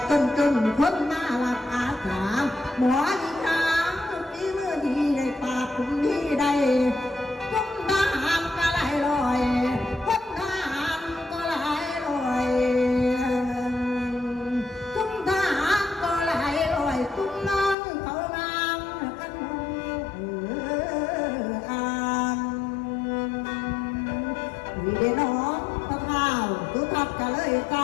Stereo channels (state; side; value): drops out; right; at 17.8 s